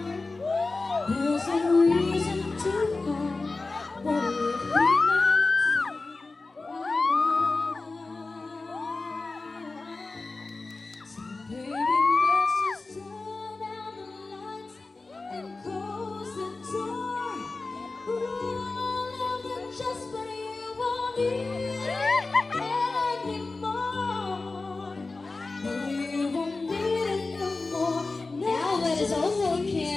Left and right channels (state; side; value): quieter; right; 3.6 dB